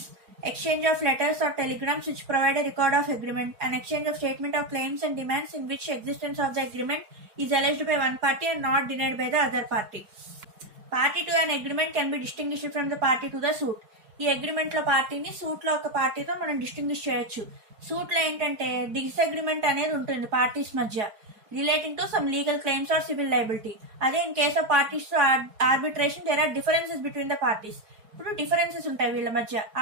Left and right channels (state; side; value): late; left; 4.8 ms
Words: exchange of letters or telegrams which provide a record of agreement, an exchange of statement of claims and demands in which existence of the agreement is alleged by one party and not denied by the other party. Party to an agreement can be distinguished from the party to the suit. ఈ అగ్రిమెంట్ లో పార్టీని సూట్ లో ఒక పార్టీతో మనం డిస్టింగ్విష్ చేయొచ్చు. సూట్ లో ఏంటంటే డిస్అగ్రిమెంట్ అనేది ఉంటుంది పార్టీస్ మధ్య, relating to some legal claims or civil liability. అదే in case of parties to arbitration there are differences between the parties. ఇప్పుడు డిఫరెన్సెస్ ఉంటాయి వీళ్ళ మధ్య.